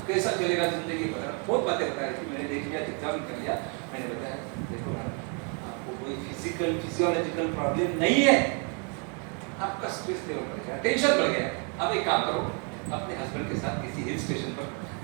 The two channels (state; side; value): quieter; left; 37.4 dB